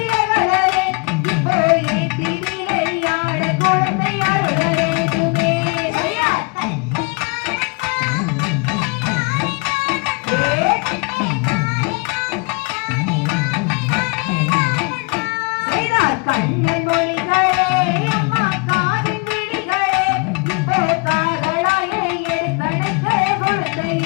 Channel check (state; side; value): quieter; right; 31.2 dB